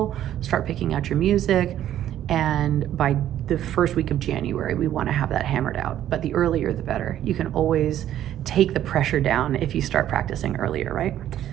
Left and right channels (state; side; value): quieter; left; 11.7 dB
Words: start picking out your music, and by the first week of January, we want to have that hammered out. But the earlier, the better. You can always take the pressure down if you start practicing earlier, right?